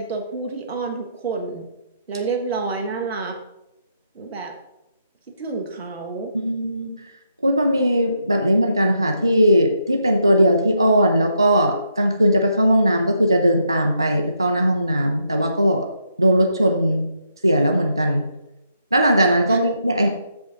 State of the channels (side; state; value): both; inverted; correlation -0.79